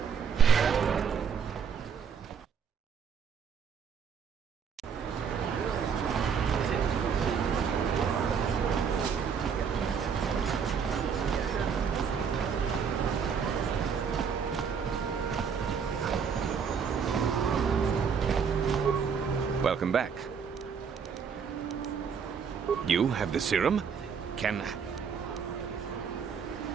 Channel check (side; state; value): left; quieter; 6.7 dB